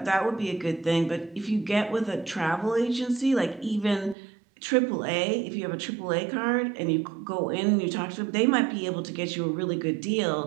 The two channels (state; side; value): drops out; left; at 4.2 s